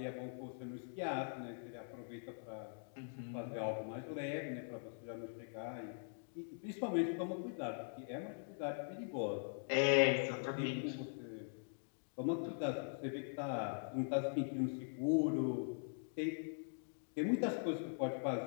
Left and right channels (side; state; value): right; silent; digital silence